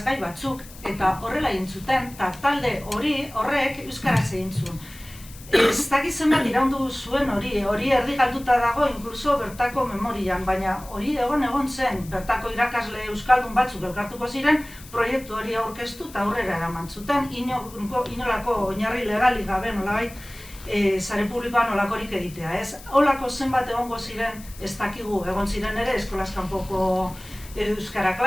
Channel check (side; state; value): left; noise; hiss, 19 dB below the sound